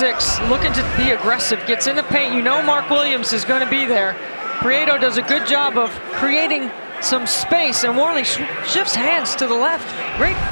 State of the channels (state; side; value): inverted; both; correlation -1.00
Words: looking to be aggressive. Gets in the paint. You know Mark Williams is going to be there. Prieto does a good job of creating some space, and Worley shifts hands to the left. Great